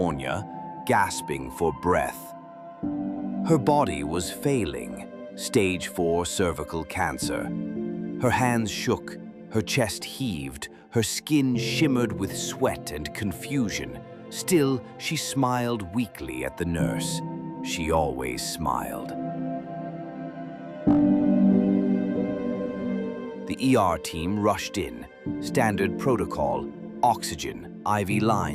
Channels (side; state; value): both; identical; correlation 1.00